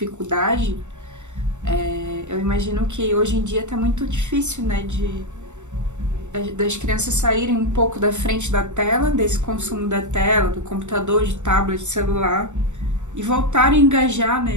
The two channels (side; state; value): left; late; 0.84 ms